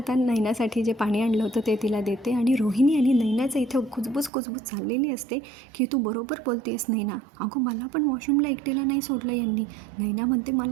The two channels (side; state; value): left; drops out; at 4.3 s